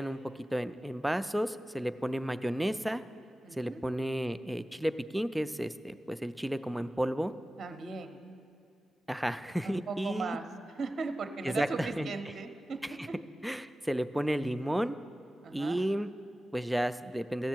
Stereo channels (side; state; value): both; normal; correlation 0.96